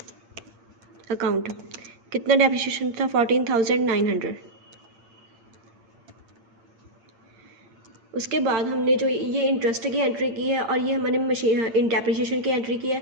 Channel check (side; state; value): left; late; 8.8 ms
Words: अकाउंट। कितना डेप्रिसिएशन था? 14,900। उसके बाद हमने जो ये इंटरेस्ट की एंट्री की है और ये हमने मशीन डेप्रिसिएशन की एंट्री की है,